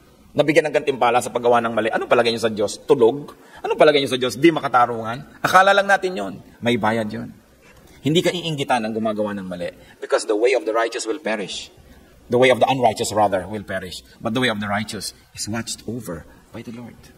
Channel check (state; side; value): identical; both; correlation 1.00